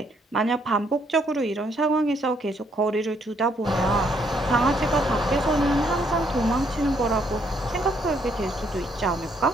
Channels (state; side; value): normal; both; correlation 0.70